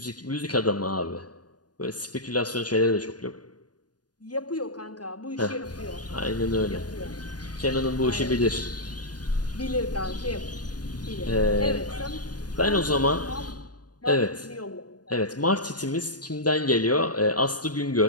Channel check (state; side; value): late; right; 0.69 ms